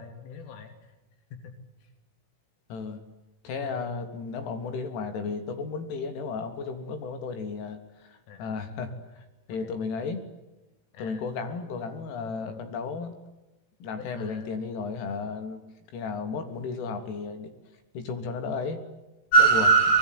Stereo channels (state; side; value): late; right; 18 ms